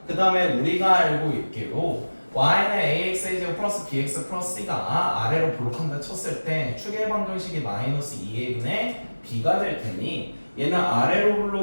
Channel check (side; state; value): both; inverted; correlation -1.00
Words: 그 다음에 우리가 알고 있기로 y는 ax의 제곱 플러스 bx 플러스 c가 아래로 볼록한다 쳤을 때 축의 방정식이 마이너스 2a분의 b가 될 테니 얘는 아래로